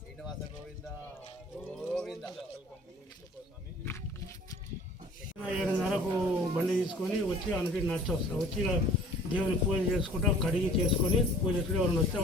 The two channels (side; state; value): both; normal; correlation 0.49